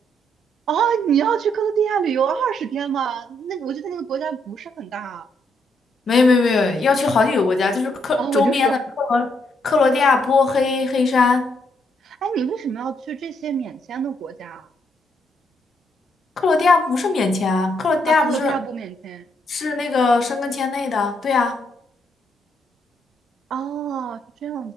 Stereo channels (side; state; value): both; normal; correlation 0.75